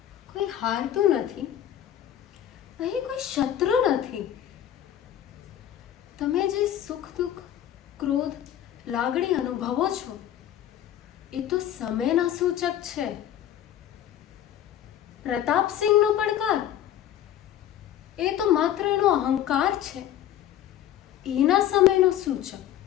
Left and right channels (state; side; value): quieter; right; 11.2 dB